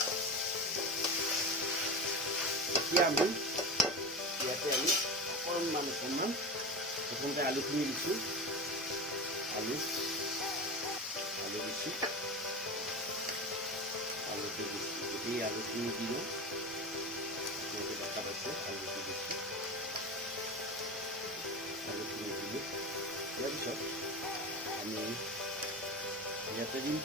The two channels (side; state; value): both; normal; correlation 0.24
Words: এতিয়া আমি ইয়াতে আমি অকণমান প্ৰথমতে আলুখিনি দিছোঁ আলু দিছোঁ আলুটো দিছোঁ যদি আলুখিনি দি লওঁ আপোনালোকে দেখা পাইছে আলুটো দিছোঁ আলুখিনি দিলোঁ ইয়াৰ পিছত আমি ইয়াতে দিম